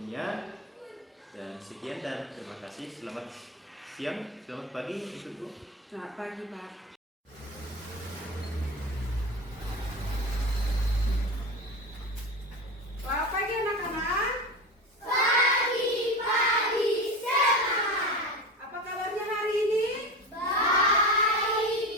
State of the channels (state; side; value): normal; both; correlation 0.26